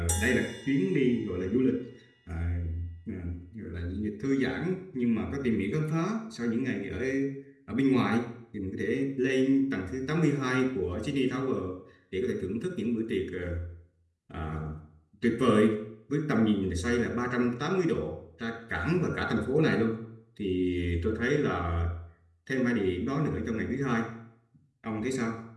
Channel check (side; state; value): both; identical; correlation 1.00